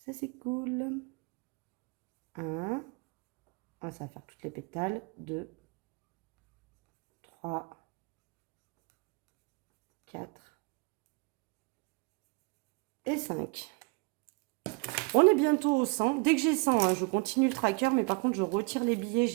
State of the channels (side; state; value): left; quieter; 29.9 dB